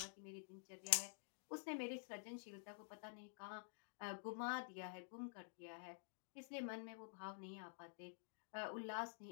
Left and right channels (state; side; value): silent; right; digital silence